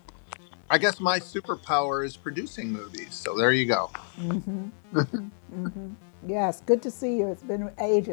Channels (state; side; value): silent; right; digital silence